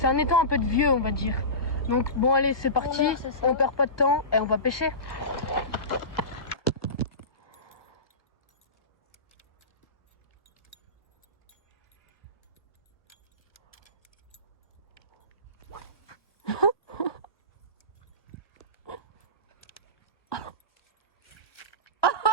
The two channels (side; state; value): right; late; 1.2 ms